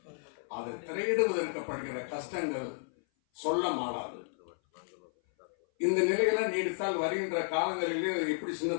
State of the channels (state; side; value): silent; right; 56 dB below the other